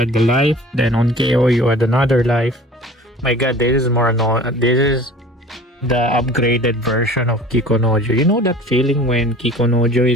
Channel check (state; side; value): normal; both; correlation 0.44